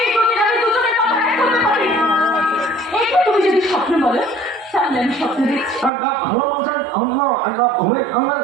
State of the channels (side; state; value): left; drops out; at 5.9 s